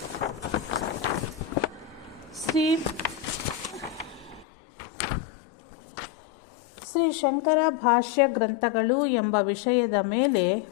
ಶ್ರೀ ಶಂಕರ ಭಾಷ್ಯ ಗ್ರಂಥಗಳು ಎಂಬ ವಿಷಯದ ಮೇಲೆ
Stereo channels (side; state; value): right; drops out; at 4.5 s